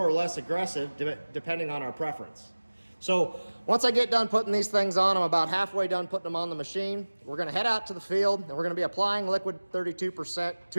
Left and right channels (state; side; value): inverted; both; correlation -1.00